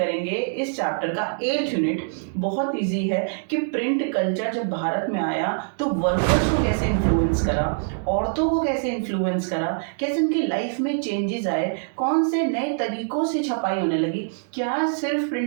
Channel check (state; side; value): silent; left; digital silence